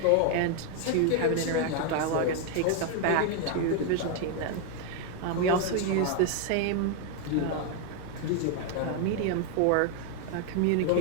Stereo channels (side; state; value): both; different; correlation 0.01